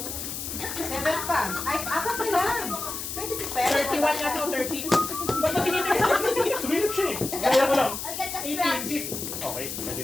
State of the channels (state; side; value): noise; left; hiss, 6 dB below the sound